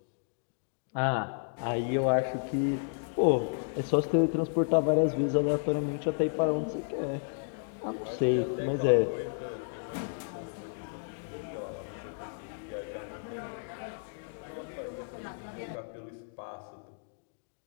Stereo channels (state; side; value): silent; right; digital silence